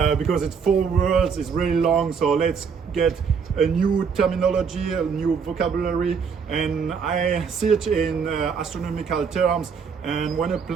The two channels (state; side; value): quieter; left; 6.1 dB